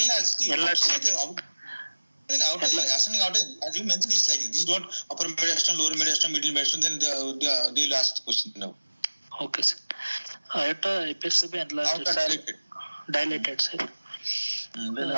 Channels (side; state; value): both; inverted; correlation -1.00